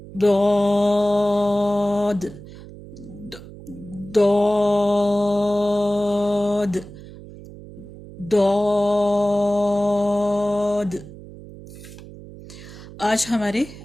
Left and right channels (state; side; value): noise; right; hum, 16 dB below the sound